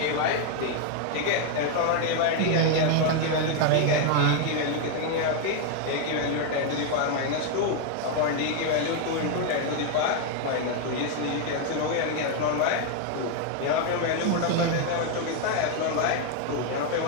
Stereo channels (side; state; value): both; different; correlation 0.01